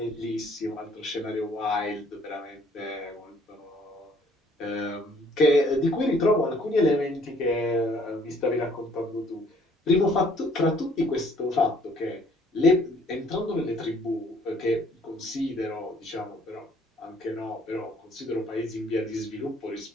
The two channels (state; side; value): normal; both; correlation 0.61